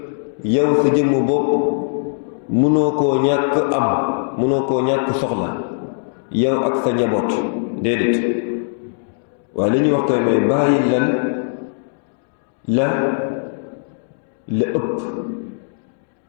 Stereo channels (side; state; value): right; silent; 66 dB below the other